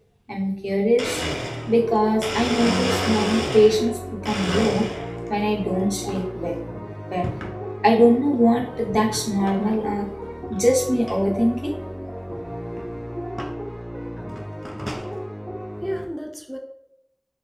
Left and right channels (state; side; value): identical; both; correlation 1.00